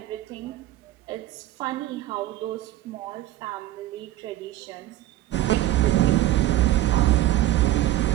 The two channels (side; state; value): left; quieter; 14.9 dB